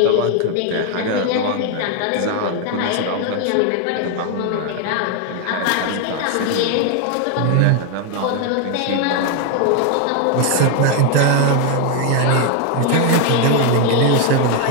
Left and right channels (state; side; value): different; both; correlation 0.00